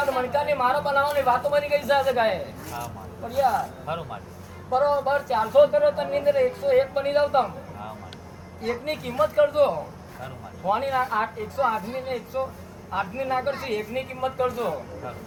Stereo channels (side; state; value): both; identical; correlation 1.00